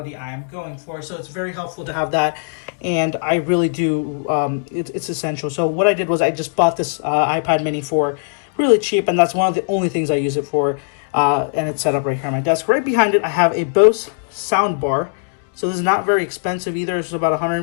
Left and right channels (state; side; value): silent; right; digital silence